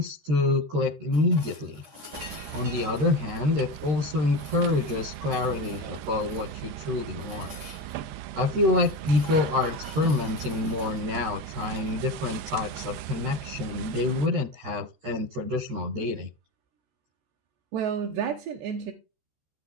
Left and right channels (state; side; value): late; left; 13 ms